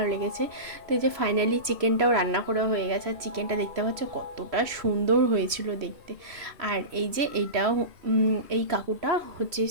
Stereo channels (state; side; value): late; left; 3.0 ms